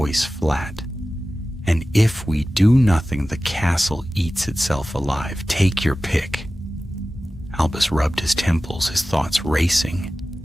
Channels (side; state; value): both; normal; correlation 0.96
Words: flat. "And if we do nothing, the castle eats itself alive. Take your pick." Albus rubbed his temples, his thoughts racing.